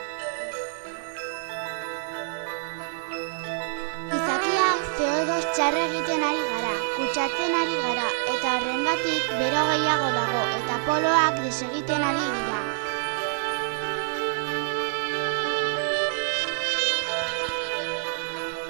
Gizakia CO2 txarra egiten ari gara, kutsatzen ari gara, eta horrengatik bero gehiago dago eta poloak desegiten ari dira.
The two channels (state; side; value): silent; left; 61 dB below the other